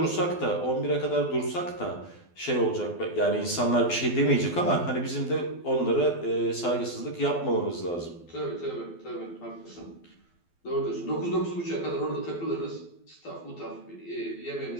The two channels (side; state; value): right; late; 12 ms